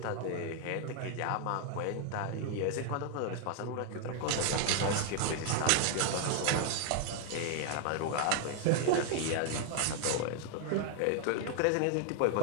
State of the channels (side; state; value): both; different; correlation 0.00